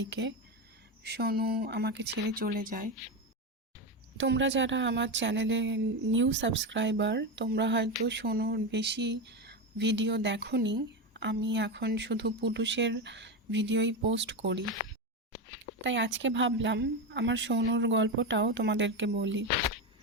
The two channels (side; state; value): both; normal; correlation 0.15